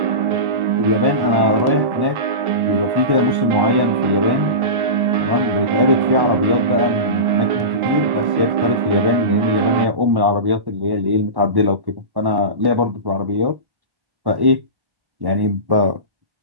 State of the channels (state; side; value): late; left; 1.1 ms